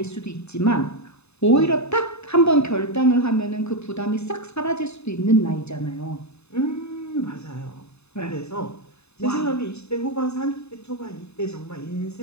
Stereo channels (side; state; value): right; late; 0.80 ms